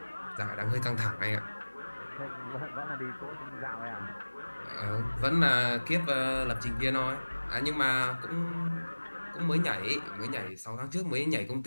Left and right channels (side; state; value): both; inverted; correlation -1.00